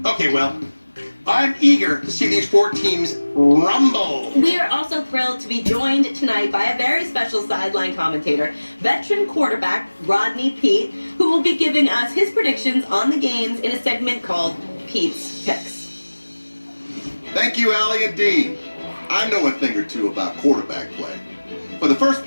Okay, well, I'm eager to see these 4 teams rumble. We are also thrilled to be joined tonight by a very special sideline commentator, veteran quarterback Rodney Pete, who will be giving us his predictions on the games in a segment called Pete's Picks. Thank you, Allie and Dean. I know a thing or two about quarterback play. For the first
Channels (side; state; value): both; inverted; correlation -1.00